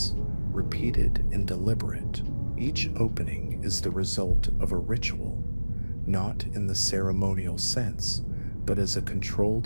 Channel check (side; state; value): both; inverted; correlation -1.00